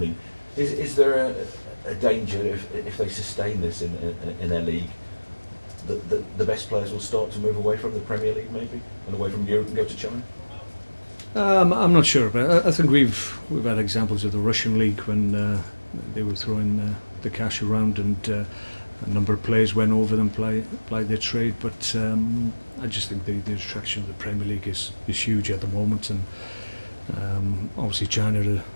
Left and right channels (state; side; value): inverted; both; correlation -1.00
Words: Is there a danger if they sustain this in their league, the best players will start to move away from the Premier League maybe and away from Europe and go to China? I'm not sure, but I think we've had examples of the Russian league when they were throwing the cash around, and a number of players went over them, played their trade. But I just think the attraction of the Premier League is huge at the moment, and obviously China